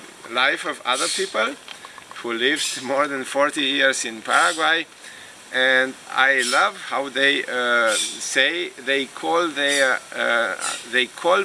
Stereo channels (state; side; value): identical; both; correlation 1.00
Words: life of other people who lived more than 40 years in Paraguay, and I love how they say they call